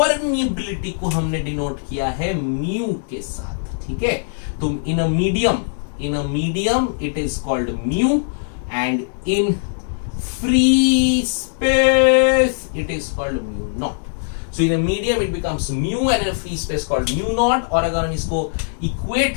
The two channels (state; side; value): silent; right; 64 dB below the other